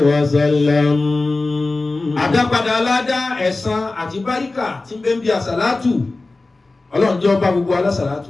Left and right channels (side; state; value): right; quieter; 3.3 dB